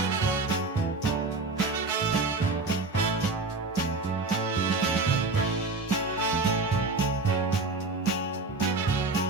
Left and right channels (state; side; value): quieter; left; 3.5 dB